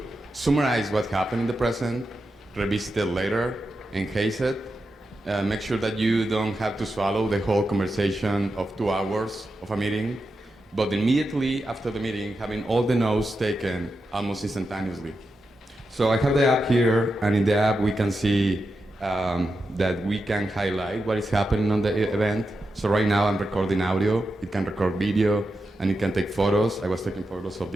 summarize what happened in the present, revisit it later, enhance it, make sure that you don't have to swallow the whole conversation of 2 hours of a meeting, but immediately after the meeting, having all the notes taken almost instantaneously. So I have the app here, and in the app we can see that we can highlight what is happening on the event. So right now I'm recording audio, it can record video, and it can take photos. I was taking photos of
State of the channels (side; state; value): both; normal; correlation 0.88